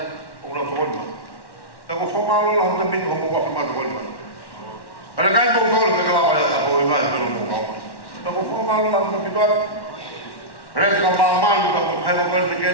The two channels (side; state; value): right; late; 1.1 ms